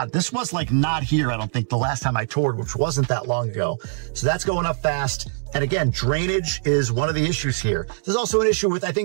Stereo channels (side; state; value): left; silent; 63 dB below the other